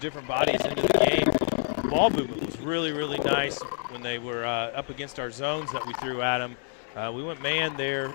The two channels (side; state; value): right; silent; 56 dB below the other